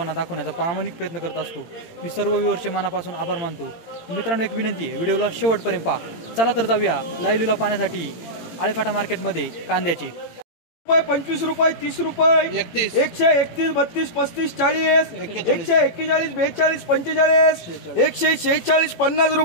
दाखवण्याचा प्रामाणिक प्रयत्न करत असतो। मी सर्व व्ह्यूअर्सचे मनापासून आभार मानतो। मित्रांनो, एक विनंती आहे, व्हिडिओला शेवटपर्यंत पहा। चला तर जाऊया लाईव्ह लिलाव पाहण्यासाठी आळेफाटा मार्केटमध्ये कांद्याचे। 25 रुपये, 30 रुपये, 131, 32, 35, 40, 141, 42, 45, 146, 50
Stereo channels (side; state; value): right; late; 18 ms